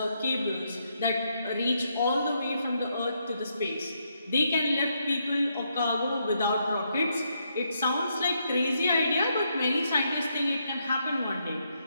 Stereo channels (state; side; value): inverted; both; correlation -0.78